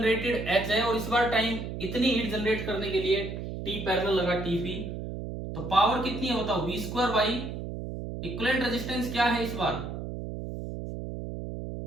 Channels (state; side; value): noise; right; hum, 7 dB below the sound